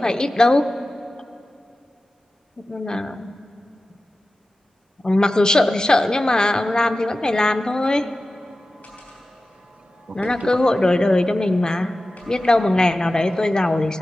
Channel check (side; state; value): both; normal; correlation 0.95